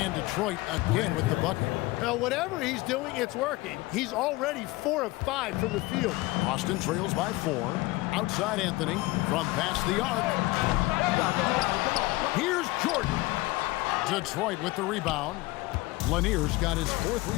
Detroit again with the bucket. Now, whatever he's doing, it's working. He's already 4 of 5 from the field. Austin trails by 4. Outside Anthony from past the arc. Here's Jordan. Detroit with the rebound. Lanier's got his 4th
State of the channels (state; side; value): quieter; right; 20.7 dB